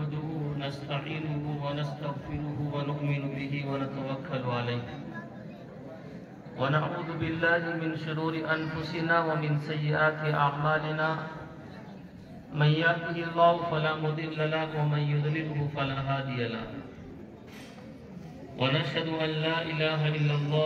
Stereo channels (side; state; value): both; identical; correlation 1.00